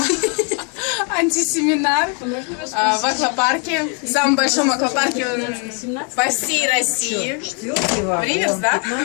Антисеминар в аквапарке, в самом большом аквапарке по всей России. В Риверс, да,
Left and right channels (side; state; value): right; quieter; 37.9 dB